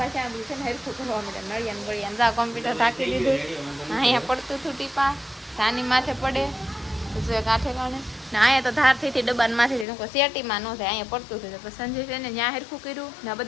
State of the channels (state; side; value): drops out; right; at 9.9 s